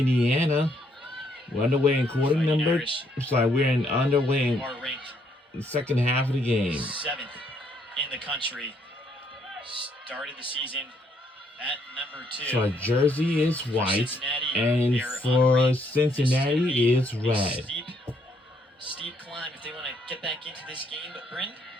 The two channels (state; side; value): normal; both; correlation 0.71